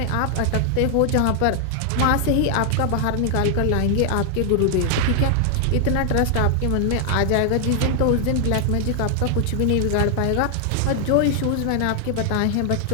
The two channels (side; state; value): both; different; correlation 0.00